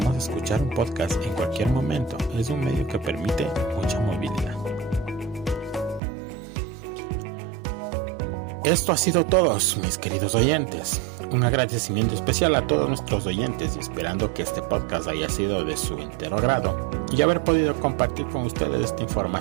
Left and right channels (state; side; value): drops out; left; at 6.0 s